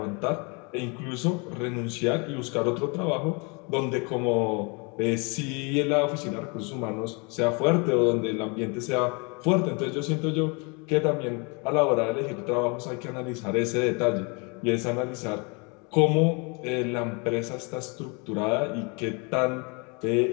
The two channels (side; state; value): right; quieter; 31.9 dB